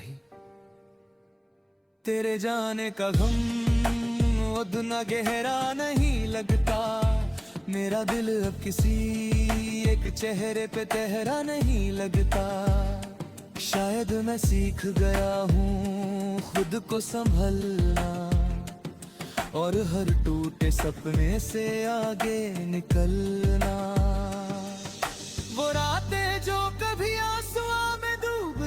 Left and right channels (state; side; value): identical; both; correlation 1.00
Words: तेरे जाने का गम उतना गहरा नहीं लगता, मेरा दिल अब किसी एक चेहरे पे तहरा नहीं लगता। शायद मैं सीख गया हूँ खुद को संभलना, और हर टूटे सपने से आगे निकलना। वो रातें जो कभी आंसुओं में